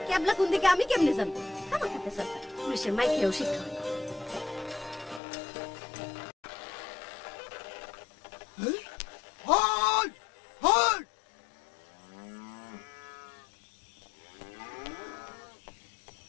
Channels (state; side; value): drops out; right; at 5.2 s